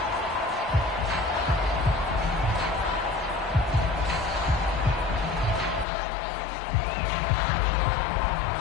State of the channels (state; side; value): drops out; right; at 5.9 s